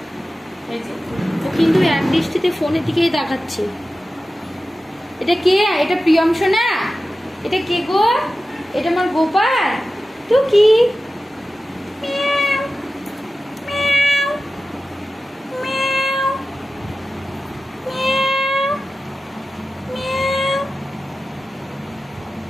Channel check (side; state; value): both; normal; correlation 0.94